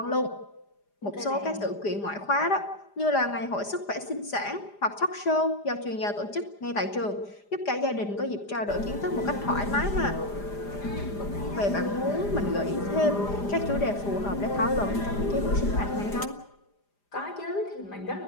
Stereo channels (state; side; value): late; right; 4.9 ms